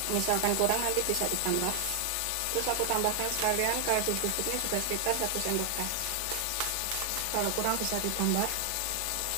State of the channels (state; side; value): different; both; correlation 0.00